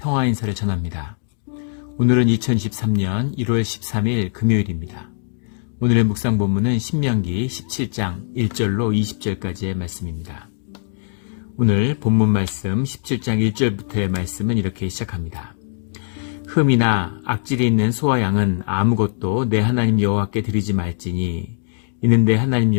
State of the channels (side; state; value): right; silent; digital silence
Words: 인사를 전합니다. 오늘은 2023년 1월 13일 금요일입니다. 오늘의 묵상 본문은 신명기 17장 1절로 20절까지의 말씀입니다. 오늘 본문 말씀 17장 1절부터의 말씀은 이렇게 시작합니다. 흠이나 악질이 있는 소와 양은 아무것도 내 하나님 여호와께 드리지 말지니 이는 내 하나님